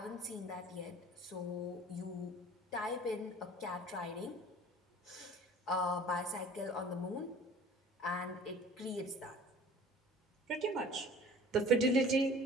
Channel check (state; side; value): normal; both; correlation 0.46